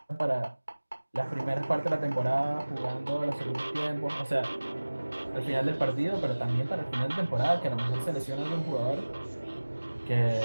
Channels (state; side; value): inverted; both; correlation -1.00